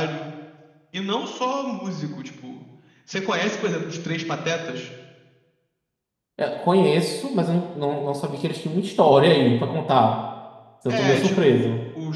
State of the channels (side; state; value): both; identical; correlation 1.00